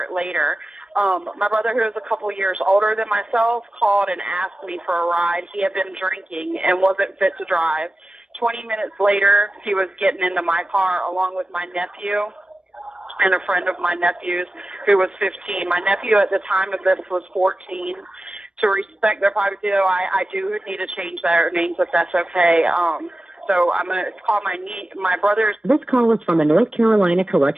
later. My brother, who is a couple years older than myself, called and asked me for a ride. He had been drinking and wasn't fit to drive. 20 minutes later, he was getting into my car along with my nephew and a friend of my nephew's who was 15. My nephew at the time of this was 14. To respect their privacy, though, I do need to change their names if that's okay. So I'm going to call my brother's. This call is from the North Carolina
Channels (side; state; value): left; late; 0.054 ms